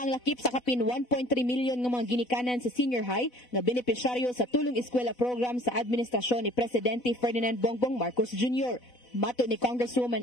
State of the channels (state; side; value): late; right; 4.0 ms